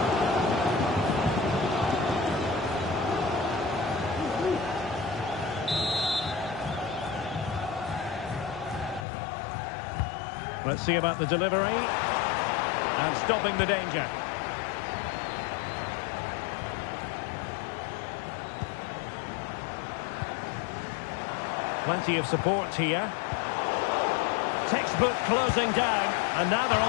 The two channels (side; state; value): right; drops out; at 9.1 s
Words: Let's see about the delivery. And stopping the danger. Plenty of support here. Textbook closing down. And now they're